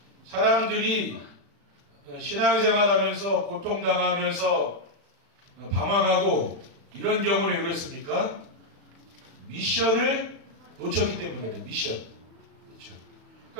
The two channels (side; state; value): left; late; 36 ms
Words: 사람들이 신앙생활하면서 고통당하면서 방황하고 이런 경우는 왜 그랬습니까? 미션을 놓쳤기 때문에 그래요. 미션. 그렇죠.